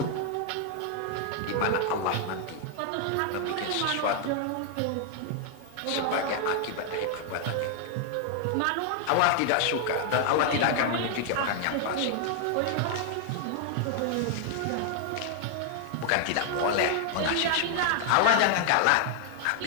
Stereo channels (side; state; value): both; different; correlation 0.00